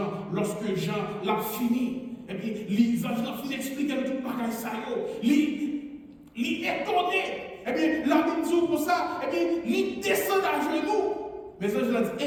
lorsque Jean l'a fini, et bien les anges l'ont fini d'expliquer tout le bagage ça, il est étonné. eh bien, la Bible dit comme ça, eh bien, il descend à genoux. Mais ça, je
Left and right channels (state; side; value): identical; both; correlation 1.00